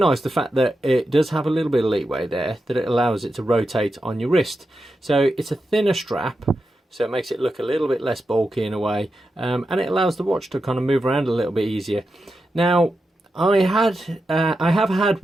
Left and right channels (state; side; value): normal; both; correlation 0.89